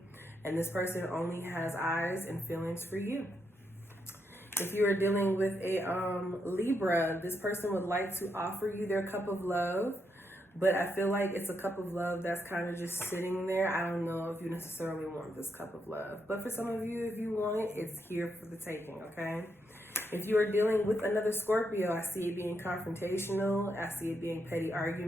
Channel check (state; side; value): normal; both; correlation 0.80